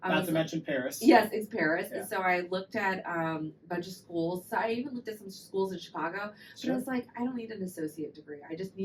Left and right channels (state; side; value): identical; both; correlation 1.00